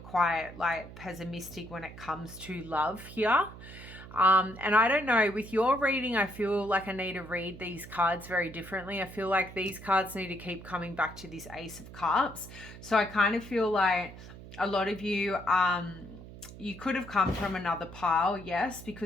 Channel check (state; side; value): noise; right; hum, 15 dB below the sound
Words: like pessimistic when it comes to love here. And I don't know, with your reading, I feel like I need to read these cards very differently. I feel like these cards need to keep coming back to this Ace of Cups. So I kind of feel like a lot of you, you could have come from another pile, yes,